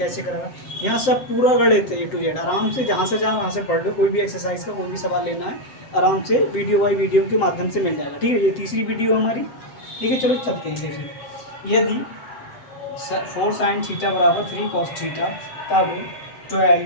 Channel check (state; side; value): late; right; 7.7 ms